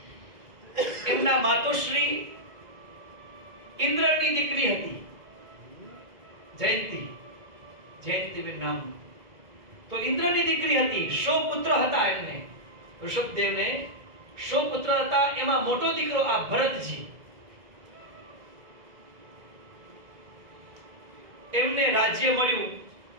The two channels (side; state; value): left; late; 2.0 ms